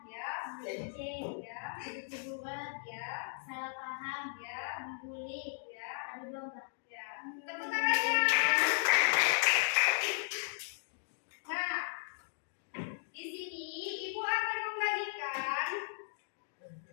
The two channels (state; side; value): silent; right; digital silence